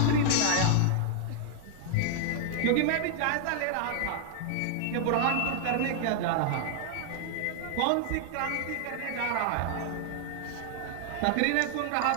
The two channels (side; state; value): both; different; correlation 0.00